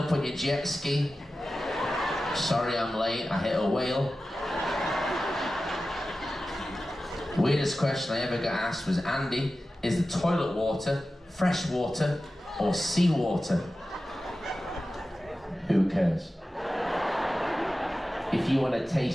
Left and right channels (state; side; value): normal; both; correlation 0.94